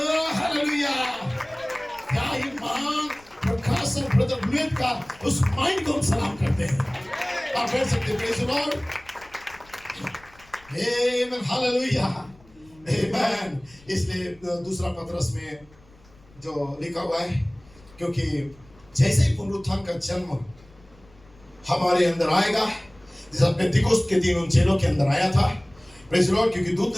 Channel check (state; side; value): noise; left; rumble, 27 dB below the sound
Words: हालेलुया, क्या ईमान प्रकाश और ब्रदर लुइस का उस माइंड को हम सलाम करते हैं। आप कह सकते हैं praise the Lord, amen, hallelujah, amen. इसलिए दूसरा पतरस में जो लिखा हुआ है, क्योंकि जैसे ही पुनरुत्थान का जन्म हमारे अंदर आएगा, जैसे पेंतिकोस्त के दिन उन चेलों के अंदर आया था, प्रेज़ द लॉर्ड, क्योंकि दूत